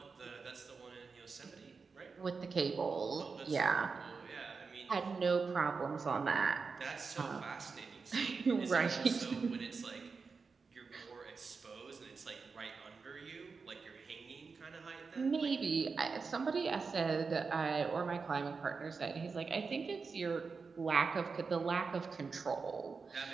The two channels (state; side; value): quieter; left; 4.8 dB